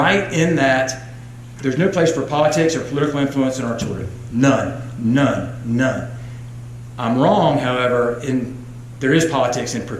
in that there's no place for politics or political influence in our children. None. I'm wrong, however, there is politics in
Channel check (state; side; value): identical; both; correlation 1.00